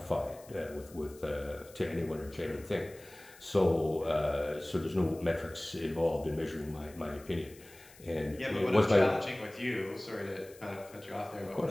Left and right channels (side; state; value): left; noise; hiss, 22 dB below the sound